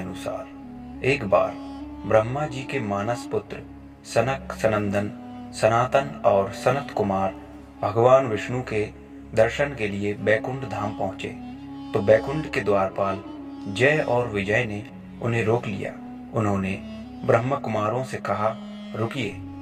एक बार ब्रह्मा जी के मानस पुत्र सनक, सनंदन, सनातन और सनत कुमार भगवान विष्णु के दर्शन के लिए बैकुंठ धाम पहुंचे तो बैकुंठ के द्वारपाल जय और विजय ने उन्हें रोक लिया। उन्होंने ब्रह्म कुमारों से कहा, रुकिए,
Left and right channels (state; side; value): identical; both; correlation 1.00